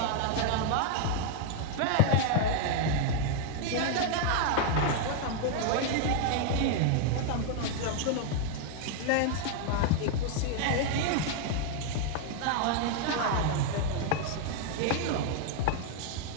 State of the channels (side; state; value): both; different; correlation 0.00